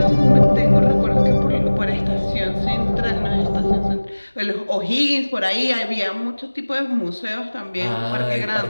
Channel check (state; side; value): inverted; both; correlation -1.00